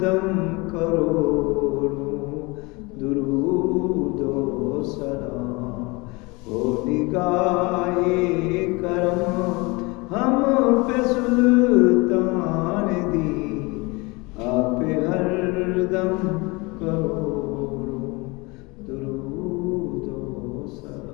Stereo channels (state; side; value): quieter; right; 25.8 dB